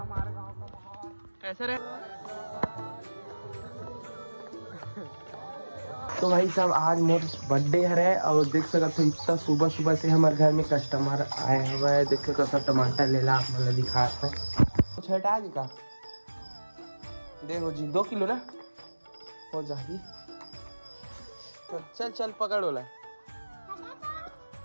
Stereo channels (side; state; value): both; inverted; correlation -1.00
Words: गांव का माहौल। कैसे रहे? तो भाई साहब आज मोर बर्थडे है और देख सकते हो इतना सुबह सुबह से हमारे घर में कस्टमर आए हुए हैं। देख सकते हो टमाटर ले ला, आप मतलब दिखाते हैं कुछ हटा दी का देखो जी 2 किलो ना हो जाएगी। तो चल चल पकड़ वाला